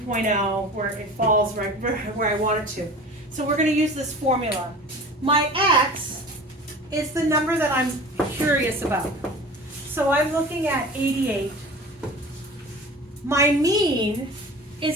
where it falls right where I want it to. So we're going to use this formula. My x is the number that I'm curious about. So I'm looking at 88. My mean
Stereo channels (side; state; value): both; normal; correlation 0.38